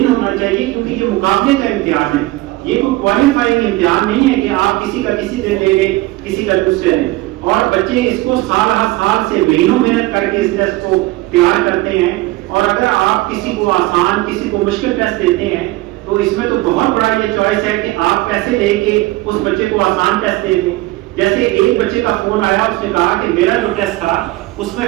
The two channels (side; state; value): left; quieter; 19.3 dB